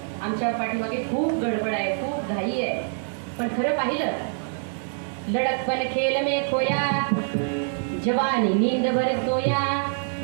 आमच्या पाठीमागे खूप गडबड आहे, खूप घाई आहे. पण खरं पाहिलं लड़कपन खेल में खोया, जवानी नींद भर सोया,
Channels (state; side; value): silent; left; digital silence